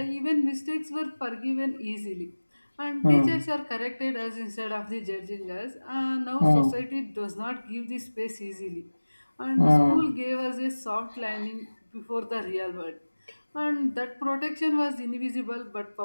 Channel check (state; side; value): inverted; both; correlation -1.00